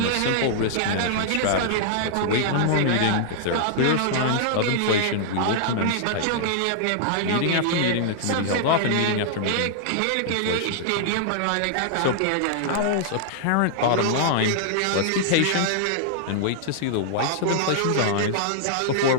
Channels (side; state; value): both; different; correlation -0.01